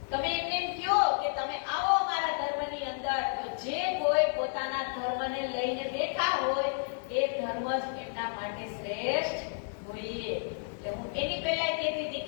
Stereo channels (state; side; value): silent; right; digital silence